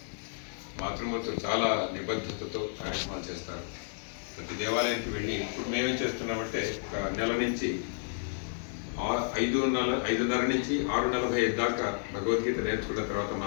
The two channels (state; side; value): silent; right; digital silence